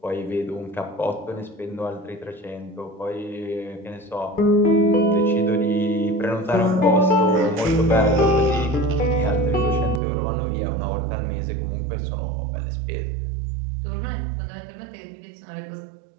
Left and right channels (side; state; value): left; drops out; at 10.0 s